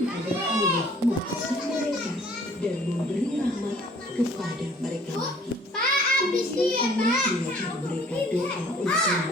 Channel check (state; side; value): normal; both; correlation 0.55